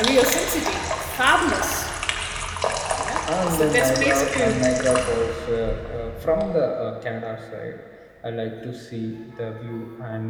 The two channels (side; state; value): both; identical; correlation 1.00